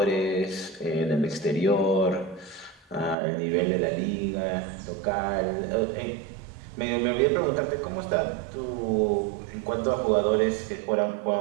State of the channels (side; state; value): left; drops out; at 3.2 s